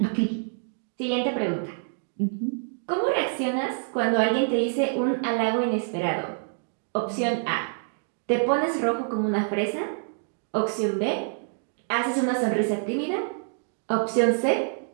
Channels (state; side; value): silent; left; digital silence